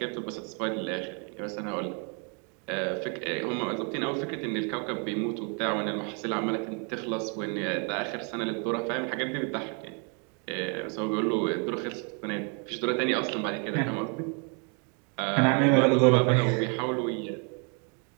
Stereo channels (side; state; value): left; quieter; 37.3 dB